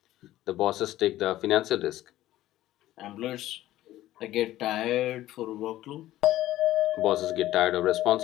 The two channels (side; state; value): right; quieter; 14.7 dB